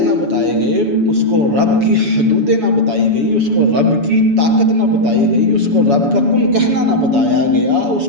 نہ بتائے گئے، اس کو رب کی حدودیں نہ بتائی گئی، اس کو رب کی طاقت نہ بتائی گئی، اس کو رب کا کن کہنا نہ بتایا گیا، اس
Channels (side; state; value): left; late; 7.1 ms